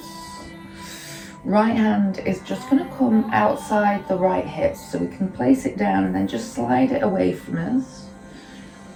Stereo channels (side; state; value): both; identical; correlation 1.00